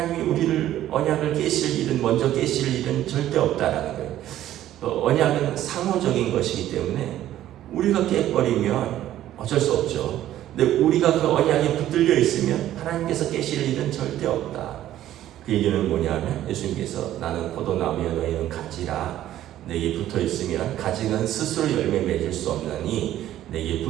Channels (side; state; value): left; quieter; 12.9 dB